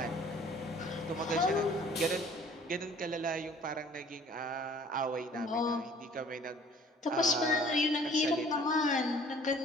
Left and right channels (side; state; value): both; normal; correlation 0.53